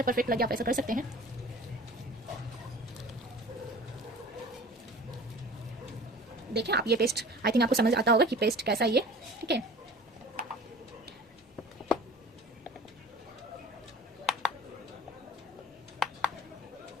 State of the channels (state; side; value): normal; both; correlation 0.42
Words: परफेक्ट लगे आप ऐसा कर सकते हैं। देखिए आप, ये पेस्ट आई थिंक आपको समझ आता होगा कि पेस्ट कैसा है ये। ठीक है,